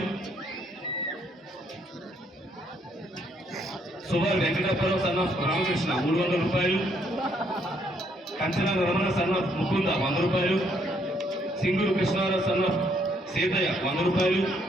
సుభార్ వెంకటప్పరావు సన్న రామకృష్ణ 300 రూపాయలు, కంచన రమణ సన్న ముకుంద 100 రూపాయలు, సింగూరు కృష్ణారావు సన్న సీతయ్య 100 రూపాయలు,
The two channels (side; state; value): both; normal; correlation 0.70